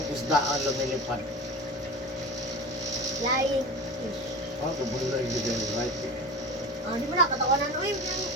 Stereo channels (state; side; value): normal; both; correlation 0.32